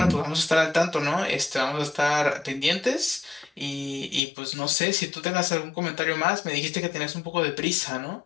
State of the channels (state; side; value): drops out; right; at 4.2 s